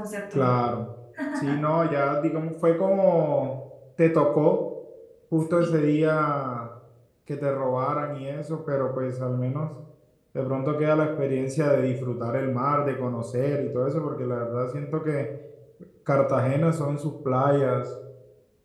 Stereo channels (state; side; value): identical; both; correlation 1.00